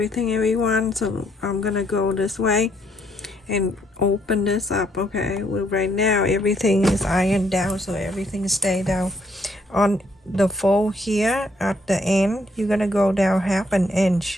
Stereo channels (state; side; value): normal; both; correlation 0.70